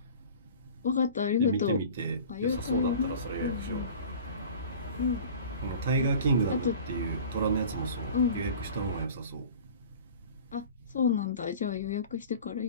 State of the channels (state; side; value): inverted; both; correlation -0.41